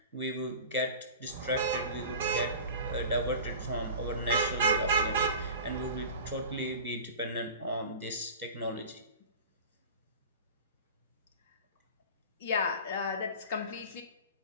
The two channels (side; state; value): both; inverted; correlation -0.36